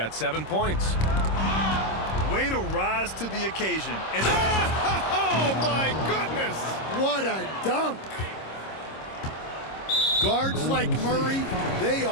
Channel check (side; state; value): right; late; 26 ms